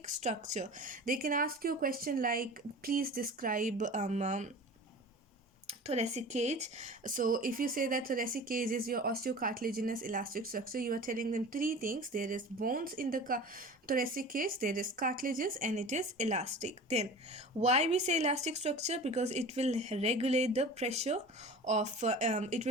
structure. They can ask you a question like, please describe thoracic cage. So if you say that thoracic cage is your osteocartilaginous elastic structure, you are telling them three things: there is bones in the thoracic cage, there is cartilages, and it is elastic. Then why we say elastic structure? Because it will regulate the pressure of it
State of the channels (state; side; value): normal; both; correlation 0.37